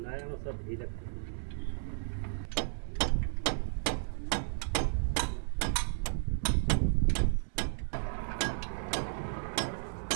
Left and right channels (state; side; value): silent; left; digital silence